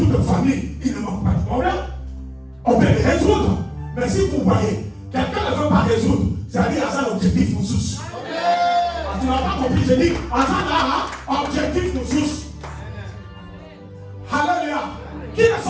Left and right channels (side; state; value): both; identical; correlation 1.00